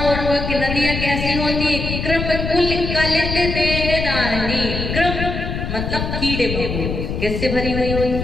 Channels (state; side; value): noise; left; rumble, 3 dB below the sound